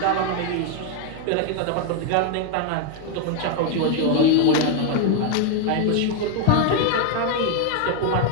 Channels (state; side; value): different; both; correlation 0.01